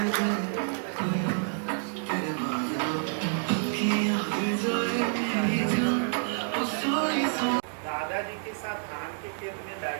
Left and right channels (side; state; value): left; silent; digital silence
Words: दादाजी के साथ धान के खेत में